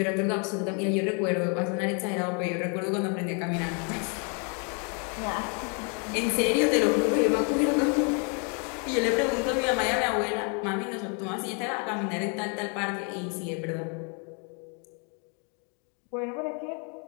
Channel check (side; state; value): right; quieter; 37.7 dB